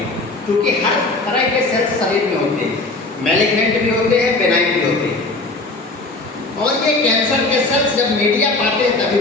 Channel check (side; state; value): right; quieter; 3.1 dB